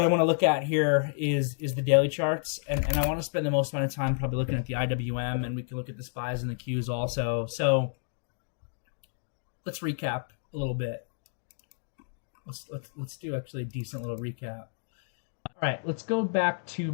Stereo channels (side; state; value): right; silent; digital silence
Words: want to look at here is the daily charts, and I want to spend the most amount of time probably looking at the IWM, and we can look at the SPYs and the Qs also. So let's recap a little bit. Let's do actually a decent little recap. All right, let's go back to